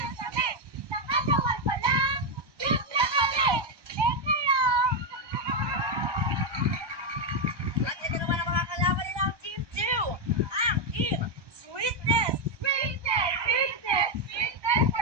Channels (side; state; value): left; late; 1.1 ms